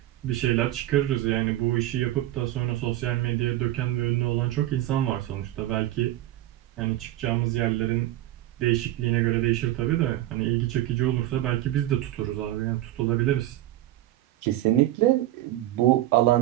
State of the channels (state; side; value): quieter; left; 14.9 dB